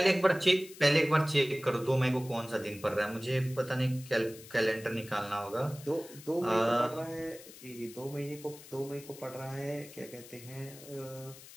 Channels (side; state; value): left; noise; hiss, 18 dB below the sound